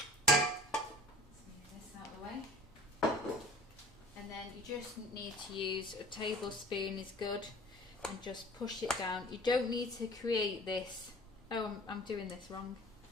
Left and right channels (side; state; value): both; normal; correlation 0.44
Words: move this out of the way. And then you just need to use a tablespoon is good, and just push it down. You don't need to create this. Oh, I'm doing this wrong.